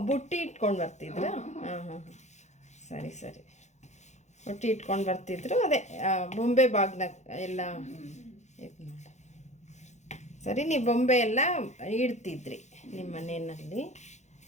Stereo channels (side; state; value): right; late; 0.33 ms